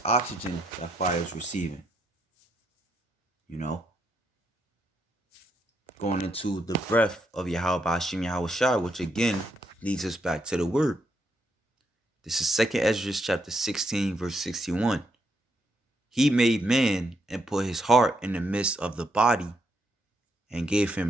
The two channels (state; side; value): normal; both; correlation 0.78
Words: oxygen that fire is receiving. You know, going into the breath of Yahweh Hashem Yahweh Shai, which again leads us back to the word. This is 2nd Ezra chapter 16, verse 61. He made man and put his heart in the midst of the body and gave